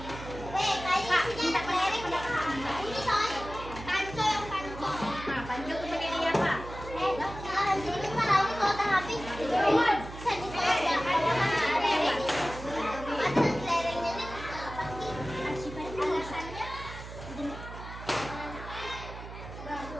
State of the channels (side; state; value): right; noise; hum, 12 dB below the sound